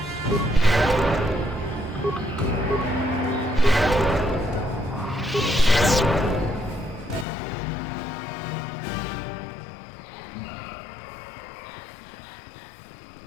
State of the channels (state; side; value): drops out; right; at 7.2 s